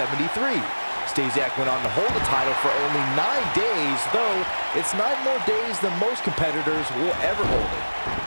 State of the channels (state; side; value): inverted; both; correlation -1.00